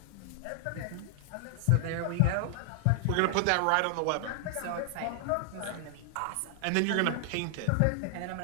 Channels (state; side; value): different; both; correlation 0.00